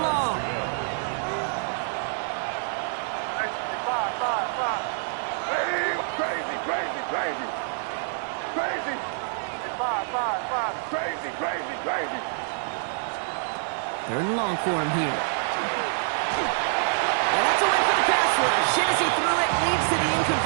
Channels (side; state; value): left; silent; digital silence